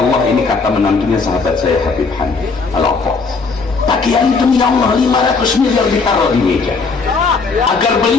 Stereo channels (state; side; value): quieter; right; 4.5 dB